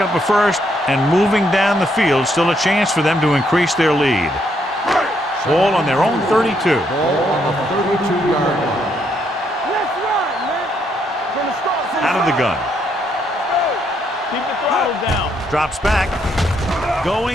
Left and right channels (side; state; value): both; normal; correlation 0.74